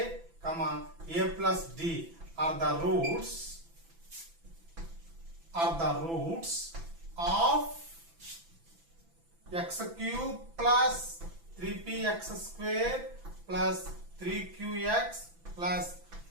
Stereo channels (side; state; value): left; late; 6.0 ms